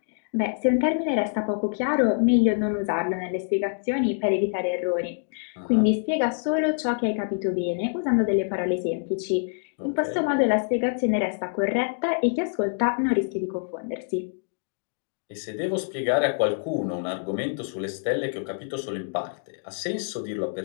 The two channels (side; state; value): right; silent; digital silence